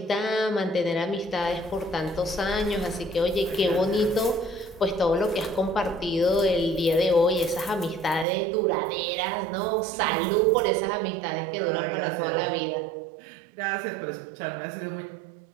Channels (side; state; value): left; drops out; at 8.2 s